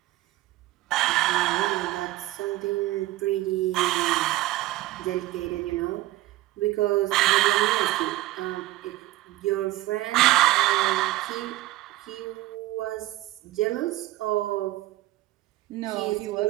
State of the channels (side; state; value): left; quieter; 17.1 dB